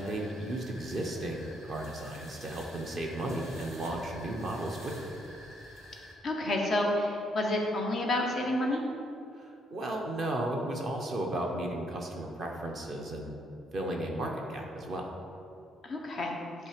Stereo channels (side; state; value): both; normal; correlation 0.72